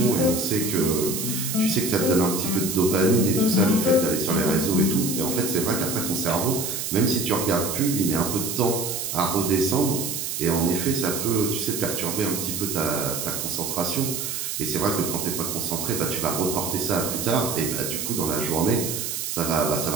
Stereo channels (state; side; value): noise; right; hiss, 4 dB below the sound